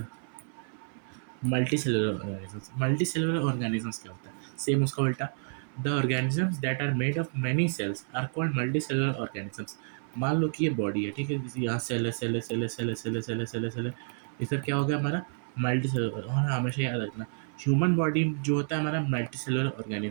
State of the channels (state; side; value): silent; left; 58 dB below the other